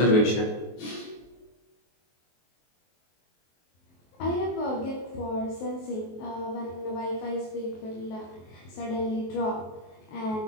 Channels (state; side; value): late; right; 23 ms